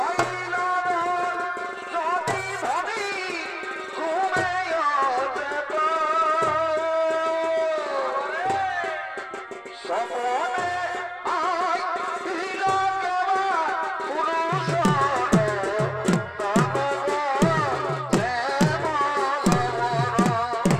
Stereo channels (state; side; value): identical; both; correlation 1.00